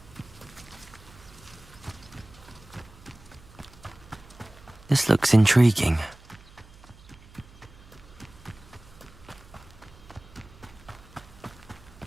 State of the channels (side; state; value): right; noise; hum, 22 dB below the sound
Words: This looks intriguing.